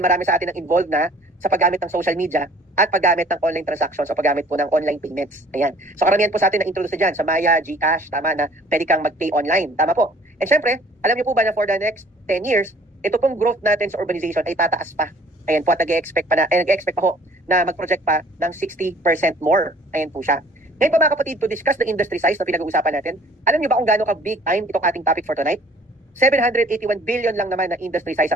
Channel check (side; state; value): both; normal; correlation 0.54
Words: marami sa atin ang involved na sa paggamit ng social media at paggamit ng online transactions o paggamit po ng online payments. Ayan. So karamihan po sa atin na introduce dyan sa Maya, GCash, tama na pwede kang mag-pay online. Tama po. And syempre, alam niyo po ba na for the next 10 years, ito pong growth natin sa urbanization ay tataas pa. Ayan po, at nag-expect pa ho na mag-project pa ng 60% more. Ayan po siya. Ngayon pa mga kapatid, to discuss the industry size na pinag-uusapan natin, alam niyo ba kung gaano ka big time itong ating topic for tonight? 781 billion lang naman na industry size